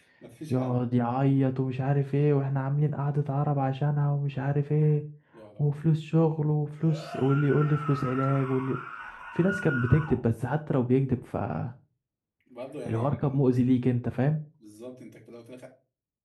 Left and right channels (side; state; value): both; identical; correlation 1.00